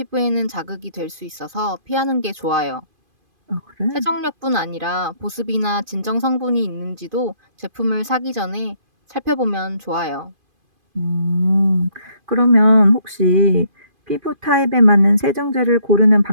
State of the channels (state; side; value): late; left; 2.5 ms